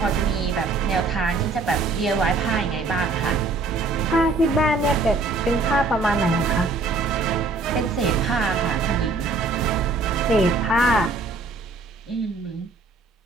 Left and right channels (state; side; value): quieter; left; 3.6 dB